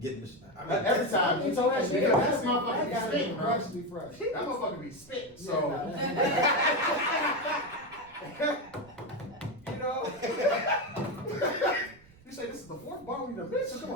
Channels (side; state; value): right; noise; rumble, 26 dB below the sound